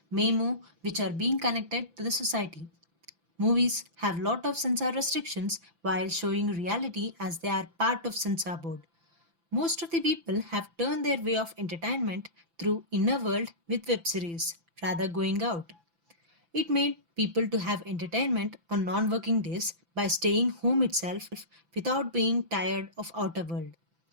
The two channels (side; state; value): left; late; 5.9 ms